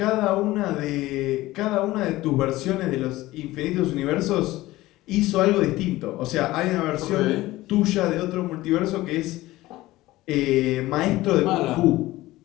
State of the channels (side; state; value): right; quieter; 17.6 dB